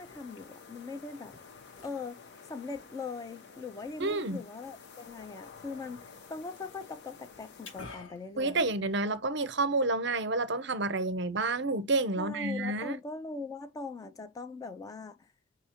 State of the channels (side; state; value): both; normal; correlation -0.07